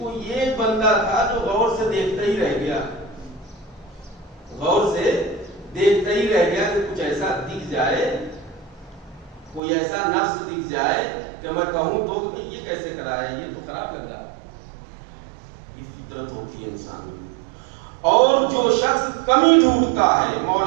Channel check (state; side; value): drops out; left; at 9.6 s